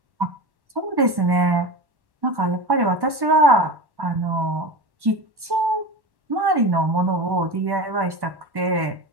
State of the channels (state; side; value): late; left; 1.1 ms